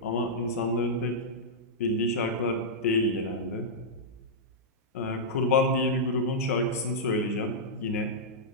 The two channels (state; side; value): normal; both; correlation -0.11